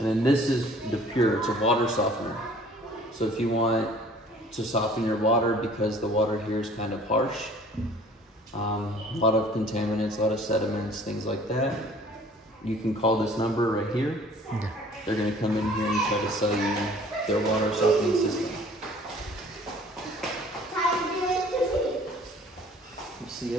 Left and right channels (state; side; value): normal; both; correlation 0.52